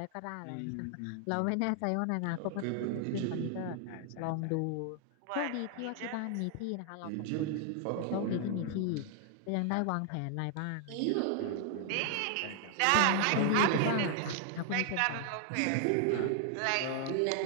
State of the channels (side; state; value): both; different; correlation 0.00